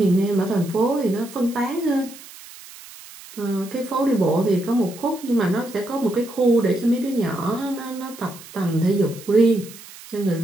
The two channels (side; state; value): right; noise; hiss, 18 dB below the sound